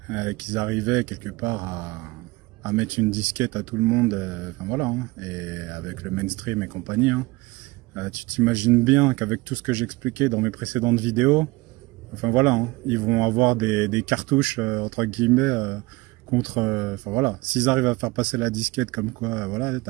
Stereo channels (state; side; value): quieter; left; 22.4 dB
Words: qu'ils arrivaient quelque part à mettre une disquette à tout le monde, enfin voilà, hein, et avec le mainstream et compagnie, hein, tu t'imagines bien qu'avec tout ce que j'expliquais dans mes précédentes vidéos, enfin voilà, hein, ils vont avoir des cartouches entre guillemets contre, enfin voilà, s'ils arrivent à faire passer la disquette comme quoi, voilà,